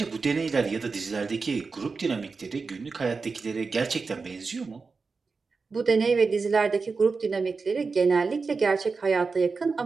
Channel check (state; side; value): quieter; left; 4.5 dB